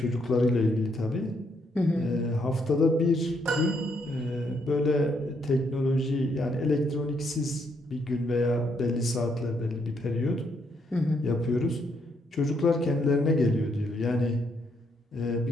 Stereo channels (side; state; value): both; normal; correlation 0.74